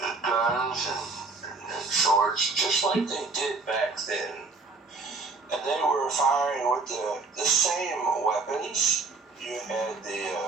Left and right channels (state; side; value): quieter; left; 4.0 dB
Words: just like they did back then. And they were firing with the same weapons. You had